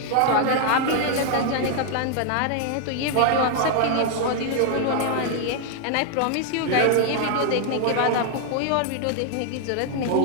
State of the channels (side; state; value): both; different; correlation 0.00